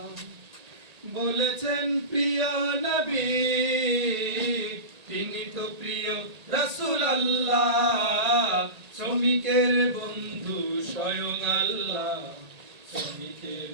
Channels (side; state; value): left; late; 1.8 ms